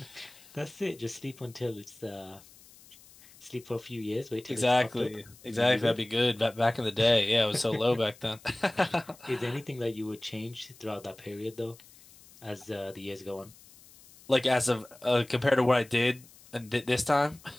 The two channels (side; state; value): left; noise; hiss, 24 dB below the sound